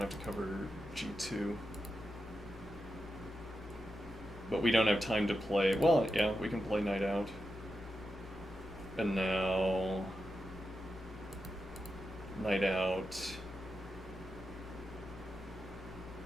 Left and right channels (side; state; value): both; normal; correlation 0.88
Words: to cover g2. But we don't have time to play... Well, yeah, we can play knight out. And now... Knight out...